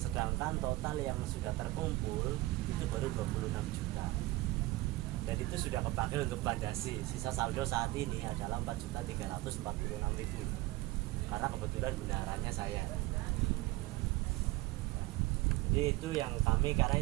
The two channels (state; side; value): quieter; left; 19.6 dB